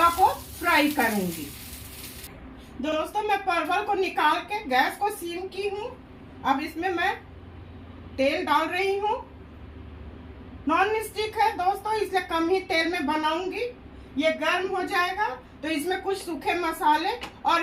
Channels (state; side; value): identical; both; correlation 1.00